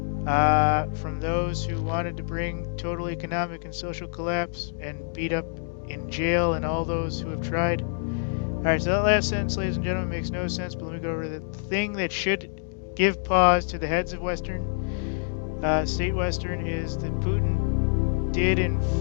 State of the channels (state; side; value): silent; right; digital silence